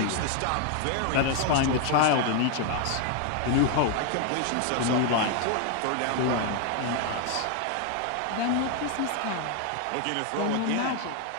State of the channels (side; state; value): both; different; correlation 0.00